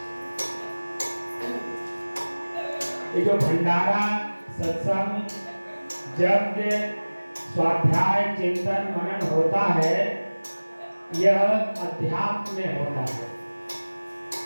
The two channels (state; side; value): inverted; both; correlation -1.00